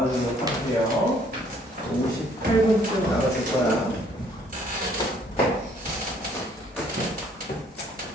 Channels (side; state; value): both; normal; correlation 0.62